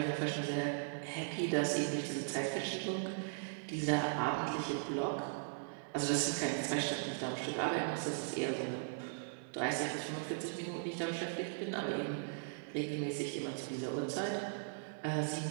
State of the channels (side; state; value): left; silent; digital silence